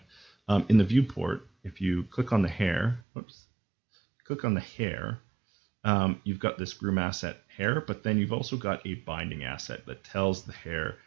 In the viewport, if you click on the hair, click on the hair, you've got this groom asset hair, but then you've also got a binding asset that tells the hair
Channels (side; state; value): left; drops out; at 3.0 s